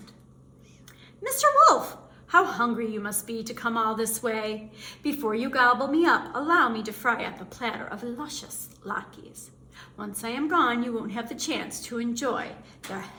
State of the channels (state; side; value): identical; both; correlation 1.00